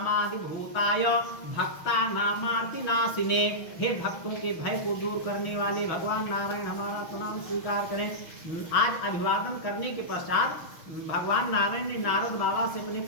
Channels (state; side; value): late; right; 6.1 ms